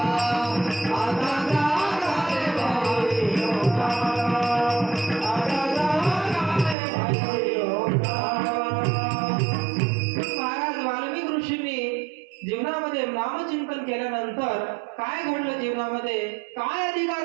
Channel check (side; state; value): left; drops out; at 6.8 s